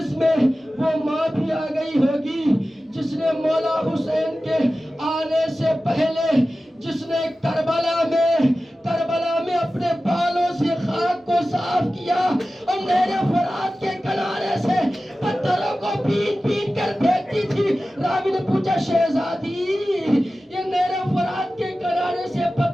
میں وہ ماں بھی آ گئی ہوگی جس نے مولا حسین کے آنے سے پہلے، جس نے کربلا میں اپنے بالوں سے خاک کو صاف کیا اور نہر فرات کے کنارے سے پتھروں کو پین کر پھینکتی تھی۔ راوی نے پوچھا شہزادی، یہ نہر فرات کے کنارے سے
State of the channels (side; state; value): both; normal; correlation 0.95